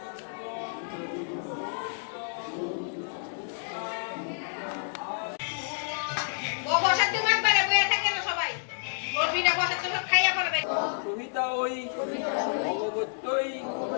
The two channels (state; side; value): silent; right; digital silence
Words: কবিতা ওই ভগবত্যই